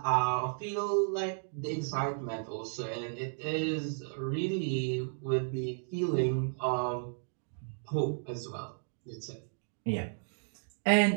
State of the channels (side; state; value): left; silent; digital silence